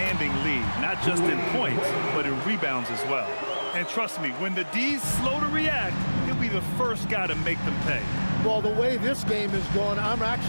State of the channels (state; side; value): inverted; both; correlation -1.00